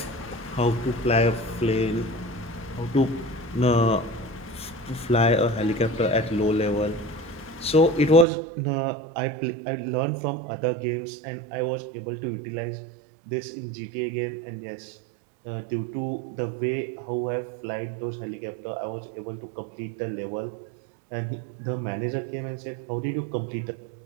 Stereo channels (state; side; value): drops out; left; at 8.2 s